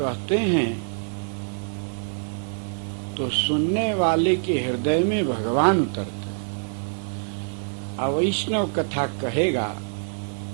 हैं तो सुनने वाले के हृदय में भगवान उतरते हैं। अवैष्णव कथा कहेगा,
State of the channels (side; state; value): left; silent; 62 dB below the other